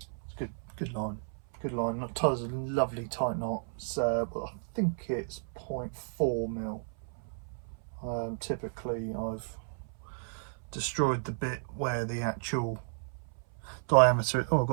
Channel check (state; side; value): silent; left; 56 dB below the other